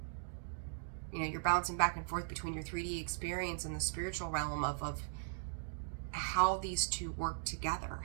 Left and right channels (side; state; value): left; silent; digital silence